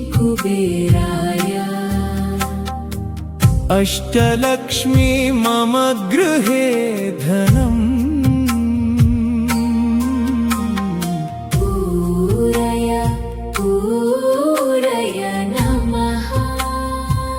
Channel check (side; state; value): both; identical; correlation 1.00